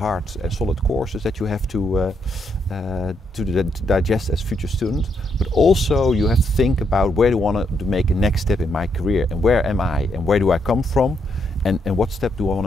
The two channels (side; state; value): both; normal; correlation 0.77